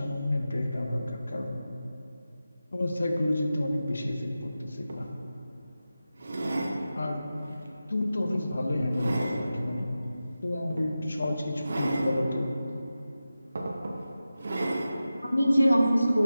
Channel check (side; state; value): both; inverted; correlation -0.93